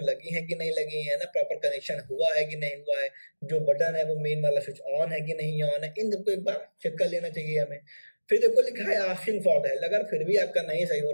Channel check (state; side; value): inverted; both; correlation -1.00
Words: लगी है कि नहीं लगी है ना, प्रॉपर कनेक्शन हुआ है कि नहीं हुआ है, जो बटन है वो मेन वाला स्विच ऑन है कि नहीं ऑन है, इन सबको एक बार चेक कर लेना चाहिए हमें। फिर देखो लिखा है आस्किंग फॉर द हेल्प, अगर फिर भी आपका नहीं सही हो